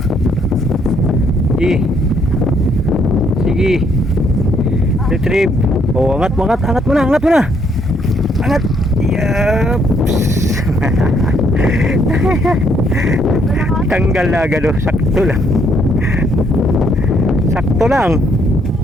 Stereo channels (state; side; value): normal; both; correlation 0.70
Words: Sige. Retrieve. Oh, angat mo na. Angat. Yaps. Tanggal na agad, oh. Sakto lang.